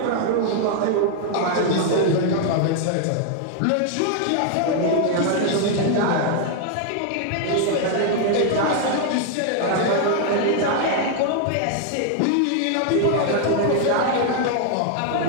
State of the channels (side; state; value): both; different; correlation 0.00